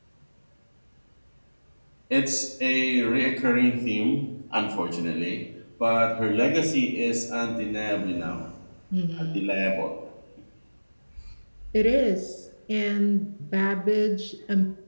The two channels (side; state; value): both; inverted; correlation -1.00